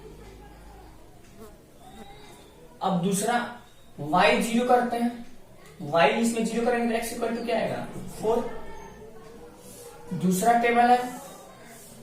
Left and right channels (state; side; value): identical; both; correlation 1.00